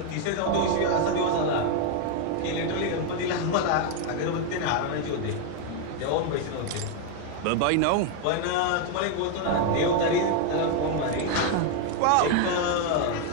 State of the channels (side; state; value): both; different; correlation 0.01